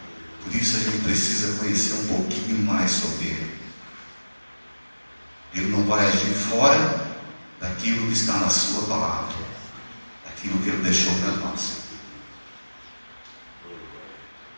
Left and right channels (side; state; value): both; inverted; correlation -1.00